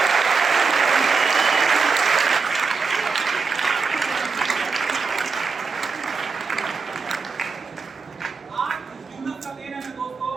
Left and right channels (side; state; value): left; quieter; 4.9 dB